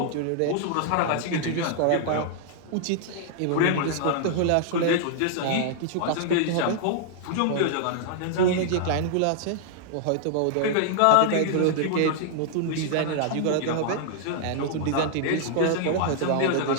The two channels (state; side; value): different; both; correlation -0.01